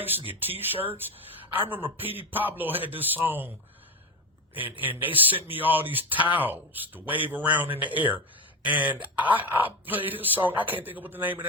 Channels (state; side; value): normal; both; correlation 0.18